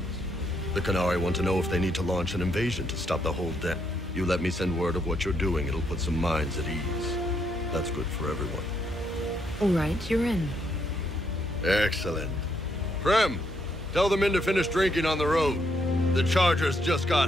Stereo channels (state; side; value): normal; both; correlation 0.75